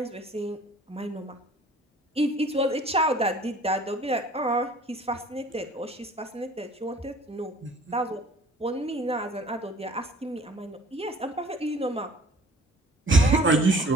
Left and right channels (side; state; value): both; normal; correlation 0.51